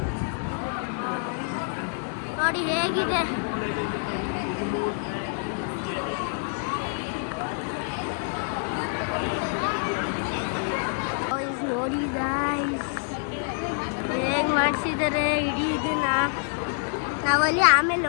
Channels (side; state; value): right; silent; 60 dB below the other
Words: ನೋಡಿ ಹೇಗಿದೆ. ನೋಡಿ ಗೈಸ್ ಹೇಗೆ ಮಾಡಿಸಿದ್ದಾರೆ ಇಡೀ ಇದನ್ನ. ನಾವಲ್ಲಿ ಆಮೇಲೆ